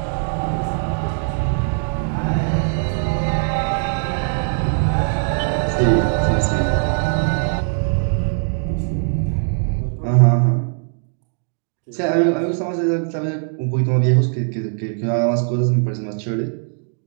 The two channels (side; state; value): left; silent; digital silence